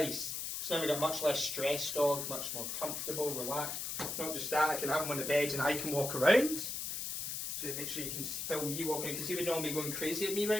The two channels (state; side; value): noise; left; hiss, 4 dB below the sound